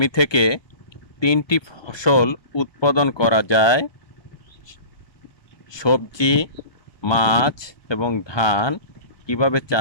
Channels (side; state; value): right; late; 1.2 ms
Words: থেকে 3টি ফসল উৎপাদন করা যায়, সবজি, মাছ এবং ধান কিভাবে